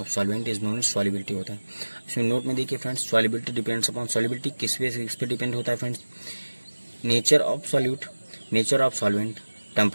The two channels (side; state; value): both; inverted; correlation -1.00